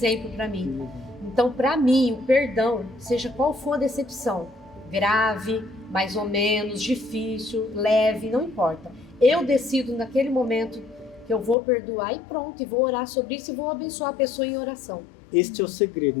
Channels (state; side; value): drops out; right; at 11.6 s